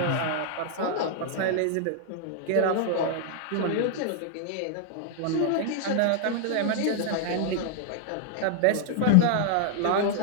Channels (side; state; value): both; different; correlation 0.00